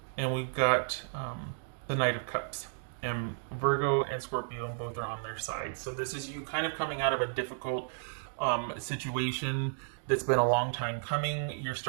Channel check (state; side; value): silent; left; digital silence